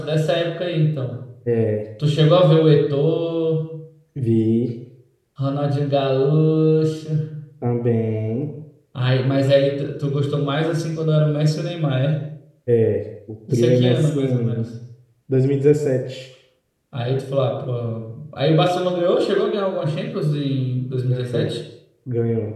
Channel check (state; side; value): identical; both; correlation 1.00